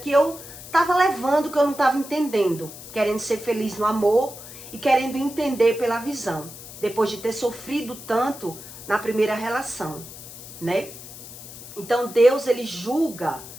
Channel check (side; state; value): left; noise; hiss, 14 dB below the sound